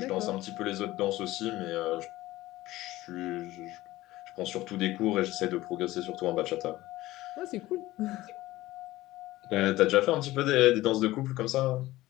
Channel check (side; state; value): right; quieter; 17.1 dB